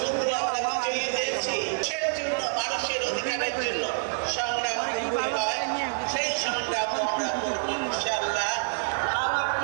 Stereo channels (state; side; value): silent; left; 60 dB below the other